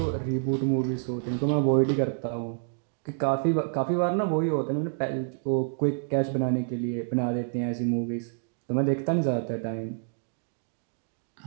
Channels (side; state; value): left; silent; digital silence